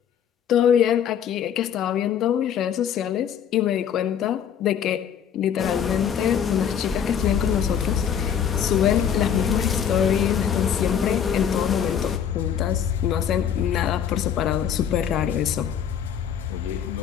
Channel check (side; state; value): right; quieter; 8.6 dB